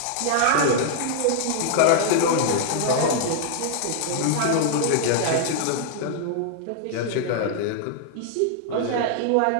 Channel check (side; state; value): both; different; correlation -0.01